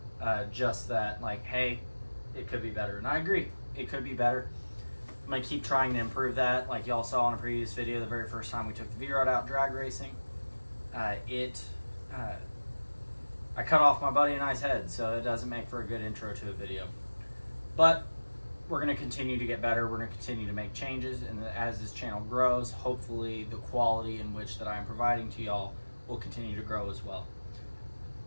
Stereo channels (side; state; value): both; inverted; correlation -1.00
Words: just that like, hey, it could be better. And I agree, it could be better. I'm going to keep trying to improve that. Like y'all saw in a previous video, the very first time we took the V-Rod out drag racing, I cut off my buddy and I's head, so it doesn't make for a good intro to a video. But we're going to continue to get better. We're going to continue to make changes, and as this channel grows, hopefully the quality in which that I'm providing to y'all will continue to grow as well.